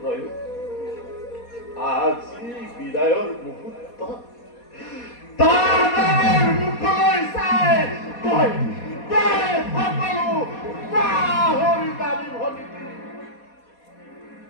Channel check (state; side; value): late; right; 4.2 ms